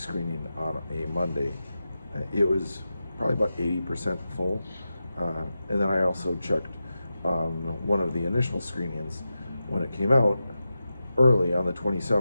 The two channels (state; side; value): inverted; both; correlation -0.91